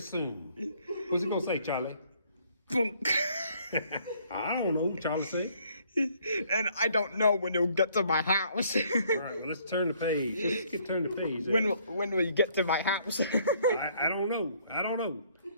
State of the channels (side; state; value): both; inverted; correlation -0.64